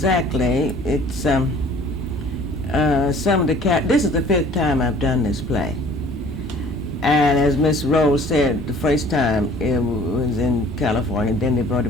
It's some of the this is the 5th time I've done this play. And as Miss Rose said, the first time it was in California, then they brought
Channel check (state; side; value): normal; both; correlation 0.51